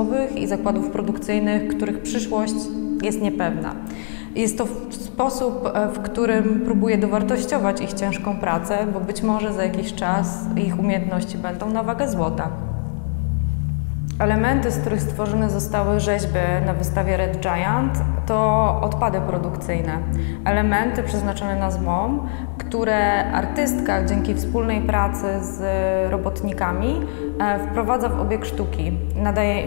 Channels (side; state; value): right; silent; digital silence